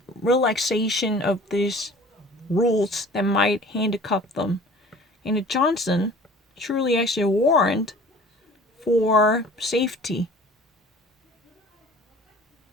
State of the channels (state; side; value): normal; both; correlation 0.47